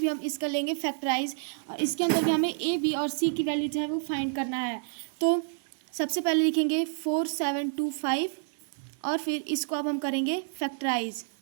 हम इसका लेंगे फैक्टराइज, और इसके अंदर भी हमें ए बी और सी की वैल्यू जो है वो फाइंड करना है। तो सबसे पहले लिखेंगे 4725, और फिर इसको अब हम करेंगे फैक्टराइज।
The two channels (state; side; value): silent; left; digital silence